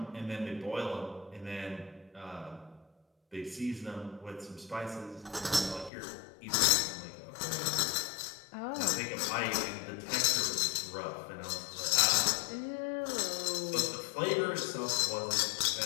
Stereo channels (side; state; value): right; drops out; at 5.9 s